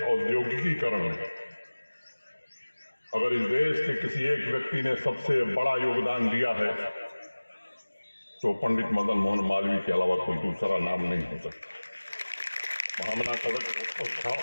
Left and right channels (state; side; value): inverted; both; correlation -1.00